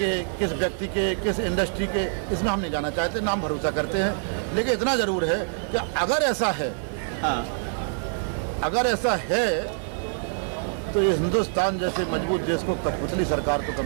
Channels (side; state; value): left; silent; digital silence